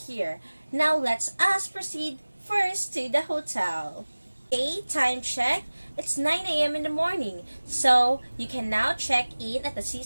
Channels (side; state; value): both; inverted; correlation -1.00